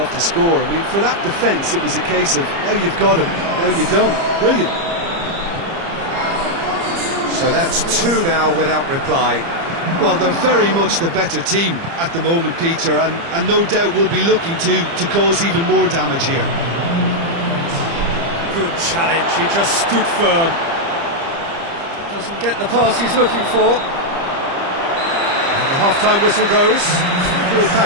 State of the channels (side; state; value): left; late; 30 ms